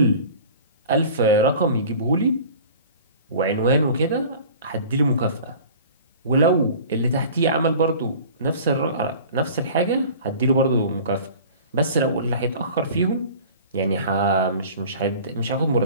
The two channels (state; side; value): inverted; both; correlation -0.42